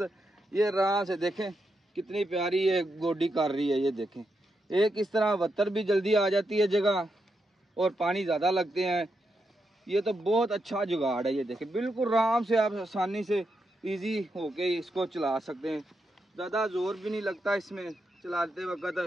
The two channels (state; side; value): normal; both; correlation 0.84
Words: ये आराम से देखें कितनी प्यारी ये गोडी कर रही है। ये देखें एक इस तरह वत्तर भी जल्दी आ जाती है जगह और पानी ज़्यादा लगते हैं। ये तो बहुत अच्छा जुगाड़ है। ये देखें बिल्कुल आराम से आप आसानी से इजी होके इसको चला सकते हैं, ज़्यादा ज़ोर भी नहीं लगता इसमें चलाते